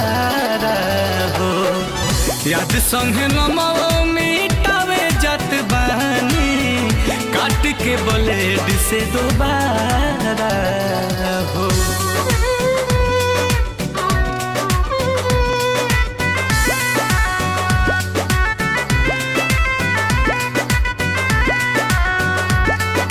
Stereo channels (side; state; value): both; identical; correlation 1.00